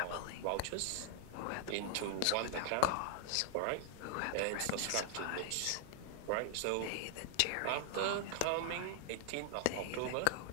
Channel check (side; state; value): both; different; correlation 0.00